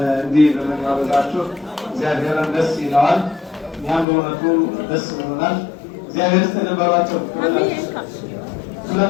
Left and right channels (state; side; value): drops out; right; at 4.0 s